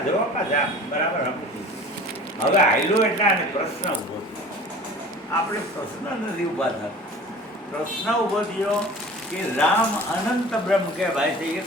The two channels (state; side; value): normal; both; correlation 0.42